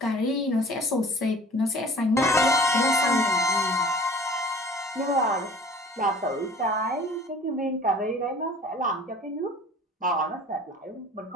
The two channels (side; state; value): both; normal; correlation 0.47